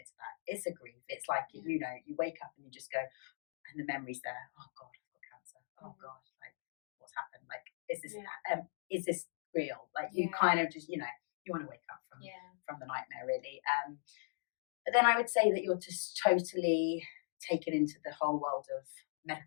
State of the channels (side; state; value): right; silent; digital silence